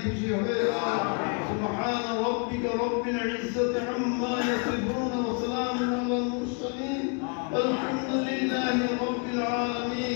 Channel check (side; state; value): right; quieter; 35.4 dB